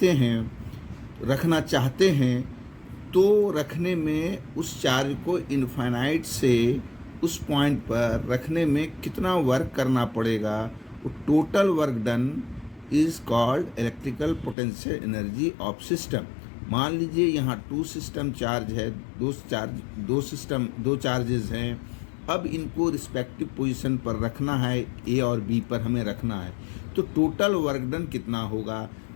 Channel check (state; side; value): drops out; right; at 14.6 s